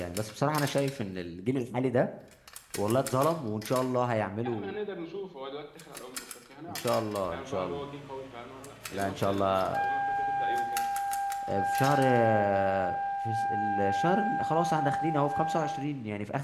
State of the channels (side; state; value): both; identical; correlation 1.00